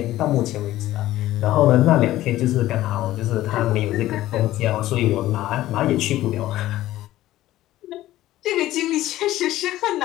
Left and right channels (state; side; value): quieter; right; 15.1 dB